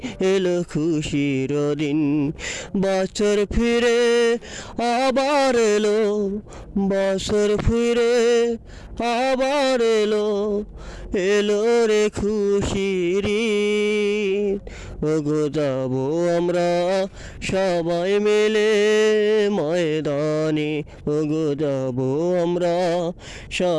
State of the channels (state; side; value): identical; both; correlation 1.00